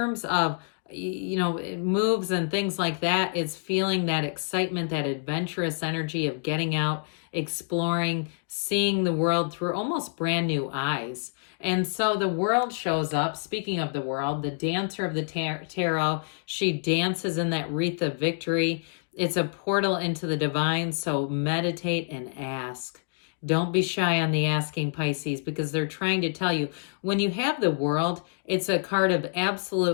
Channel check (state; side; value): silent; right; digital silence